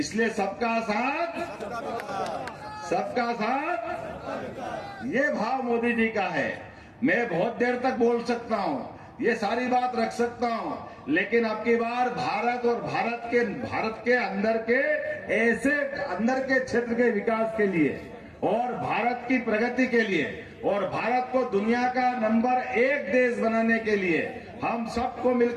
सबका साथ, सबका साथ, ये भाव मोदी जी का है। मैं बहुत देर तक बोल सकता हूं, ये सारी बात रख सकता हूं, लेकिन अब की बार भारत और भारत के अंदर के ऐसे अंदर के क्षेत्र के विकास के लिए और भारत की प्रगति के लिए और भारत को दुनिया का नंबर 1 देश बनाने के लिए हम सबको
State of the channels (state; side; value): identical; both; correlation 1.00